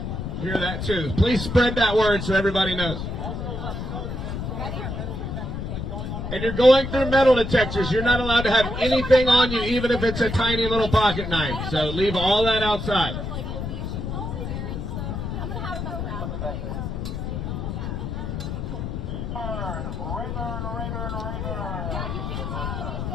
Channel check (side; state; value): left; noise; rumble, 4 dB below the sound